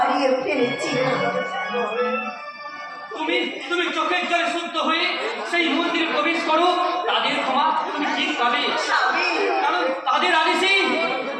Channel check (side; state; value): both; identical; correlation 1.00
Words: ফেলেছি। তুমি তুমি চোখের জলে শুদ্ধ হয়ে সেই মন্দিরে প্রবেশ করো, তাদের ক্ষমা তুমি ঠিক পাবে, স্বামী কারণ তাদের আদেশেই